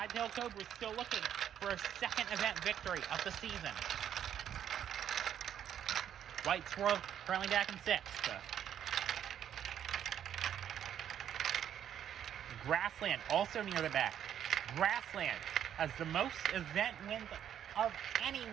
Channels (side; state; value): left; quieter; 9.7 dB